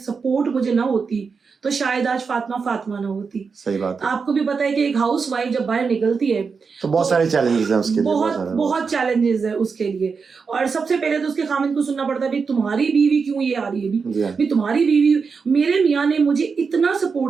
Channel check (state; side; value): quieter; left; 5.3 dB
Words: مجھے نہ ہوتی تو شاید آج فاطمہ نہ ہوتی. صحیح بات ہے. آپ کو بھی پتا ہے کہ ایک ہاؤس وائف جب باہر نکلتی ہے تو بہت سارے چیلنجز ہیں اس کے لیے, بہت چیلنجز ہیں اس کے لیے. اور سب سے پہلے تو اس کے خامند کو سننا پڑتا ہے بھی تمہاری بیوی کیوں یہ آ رہی ہے, بھی تمہاری بیوی. میرے میاں نے مجھے اتنا